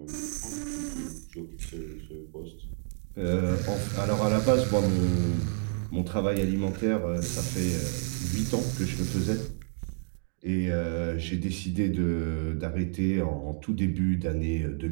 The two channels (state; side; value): silent; left; 58 dB below the other